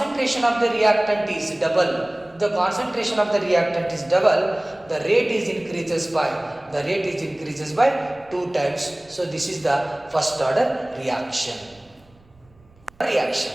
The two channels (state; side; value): noise; right; rumble, 30 dB below the sound